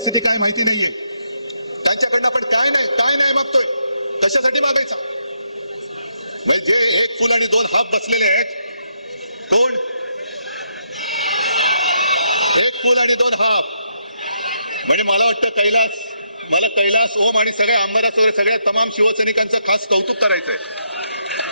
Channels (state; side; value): inverted; both; correlation -0.77